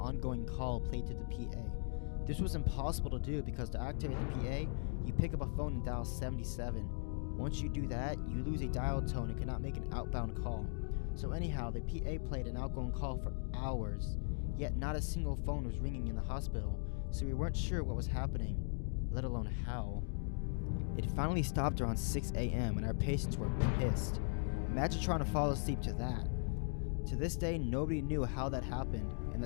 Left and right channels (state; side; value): silent; right; 52 dB below the other